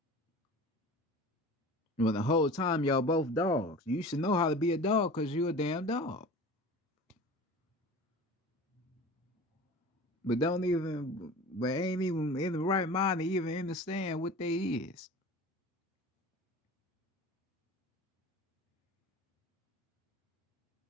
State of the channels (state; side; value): normal; both; correlation 0.38